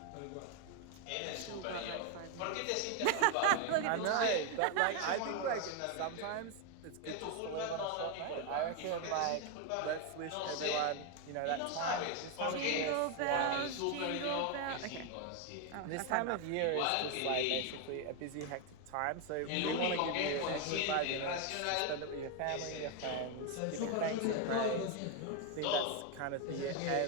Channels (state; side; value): different; both; correlation 0.01